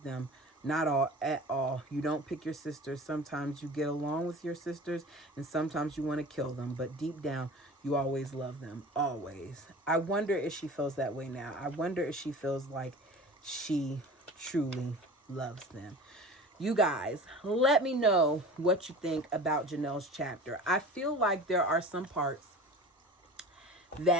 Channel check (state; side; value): normal; both; correlation 0.38